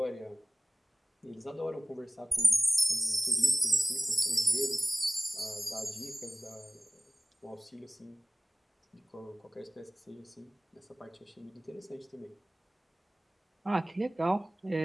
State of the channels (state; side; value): normal; both; correlation 0.96